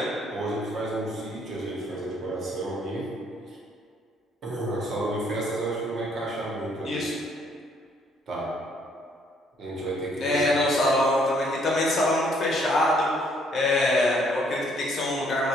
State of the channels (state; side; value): normal; both; correlation 0.66